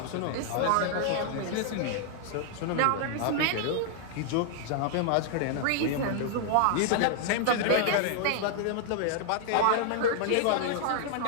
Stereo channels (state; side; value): different; both; correlation 0.00